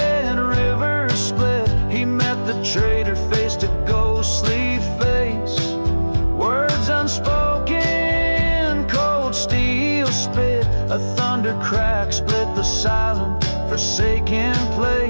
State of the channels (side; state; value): both; inverted; correlation -1.00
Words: river split, he met the traitor A thunder crack split the silent, forsaken